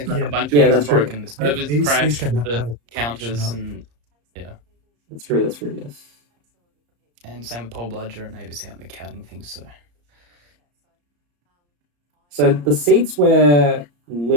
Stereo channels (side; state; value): left; late; 34 ms